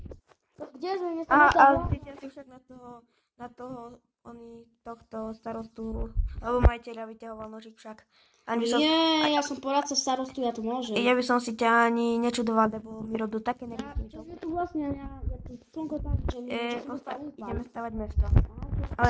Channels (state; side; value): identical; both; correlation 1.00